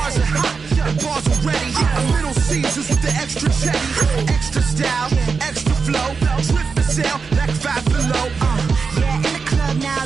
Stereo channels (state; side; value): quieter; left; 5.1 dB